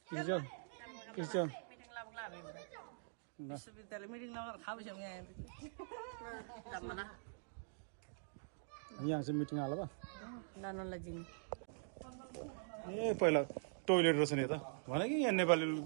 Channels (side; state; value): left; silent; digital silence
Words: इसे जाओ इसे जाओ विश्वविद्यालय मिटिङ लगाएर खाबेछौँ यहाँ यहाँ चाहिँ मिटिङ हाल बा नानोलाई जिम ए पहिला टोइलेट रहेछ नि त भने कि यहाँ नेपाली